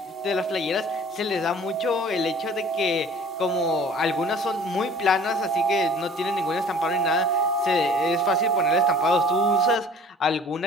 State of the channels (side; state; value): both; normal; correlation 0.49